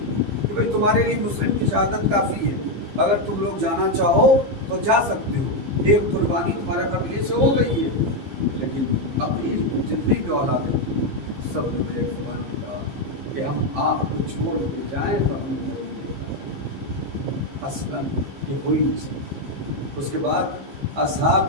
کہ بھائی تمہارے لیے مسلم کی شہادت کافی ہے، اگر تم لوگ جانا چاہو تو جا سکتے ہو، ایک قربانی تمہارے قبیلے سے ہو گئی ہے۔ لیکن عقیل کی جتنی بھی اولادیں تھیں سب نے ایک زبان میں کہا کہ ہم آپ کو چھوڑ کے جائیں تو ہمیں ضروری ہے، اصلاً یہ ہو ہی نہیں سکتا۔ اس کے بعد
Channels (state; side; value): late; left; 15 ms